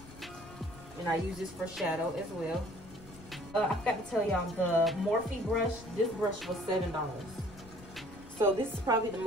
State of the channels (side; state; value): left; noise; rumble, 19 dB below the sound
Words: And I use this for shadow as well. I forgot to tell y'all, the Morphe brush, this brush was $7. So this is probably the